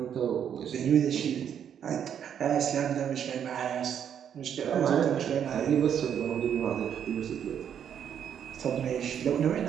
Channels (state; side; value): quieter; left; 8.7 dB